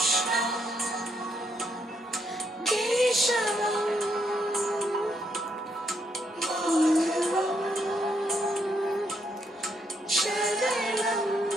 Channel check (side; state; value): both; normal; correlation 0.76